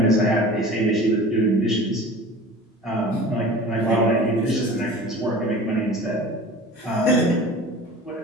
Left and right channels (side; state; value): both; normal; correlation 0.40